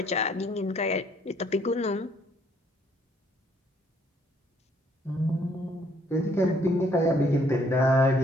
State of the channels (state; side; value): normal; both; correlation 0.65